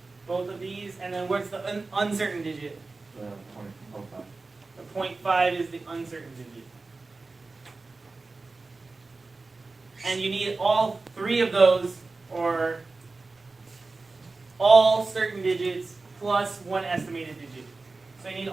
Both of these. And then what's the uncertain digit? The 0.05. The 0.5 is the uncertain digit. And you need all three of those, or all certain digits plus one estimated digit. So you need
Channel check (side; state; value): left; quieter; 3.7 dB